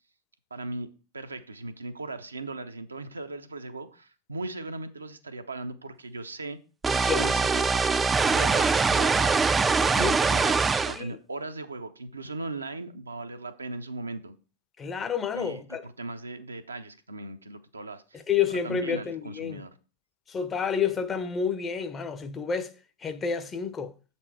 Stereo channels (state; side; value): normal; both; correlation 0.60